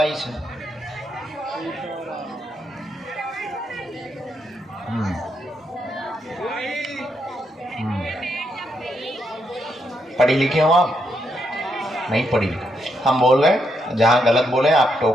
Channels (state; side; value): normal; both; correlation 0.79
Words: से पढ़ी लिखे हो आप? नहीं पढ़ी लिखी। हम बोल रहे जहाँ गलत बोले आप